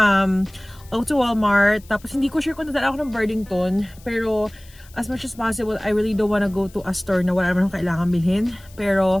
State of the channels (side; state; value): left; noise; hiss, 25 dB below the sound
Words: go to Walmart. Tapos hindi ko sure kung dadala ako ng Burlington. Pero as much as possible, I really don't wanna go to a store na wala naman akong kailangan bilhin. Pero